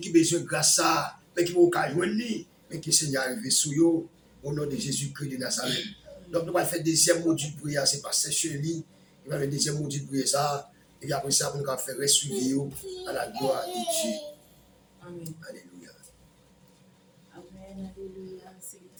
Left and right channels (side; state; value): both; identical; correlation 1.00